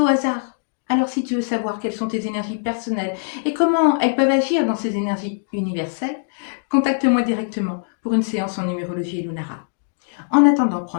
hasard. Alors si tu veux savoir quelles sont tes énergies personnelles et comment elles peuvent agir dans ces énergies universelles, contacte-moi directement pour une séance en numérologie Lunara. En attendant,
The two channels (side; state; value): right; silent; digital silence